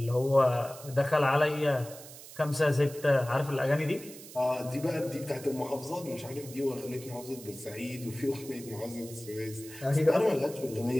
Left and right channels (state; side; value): noise; right; hiss, 16 dB below the sound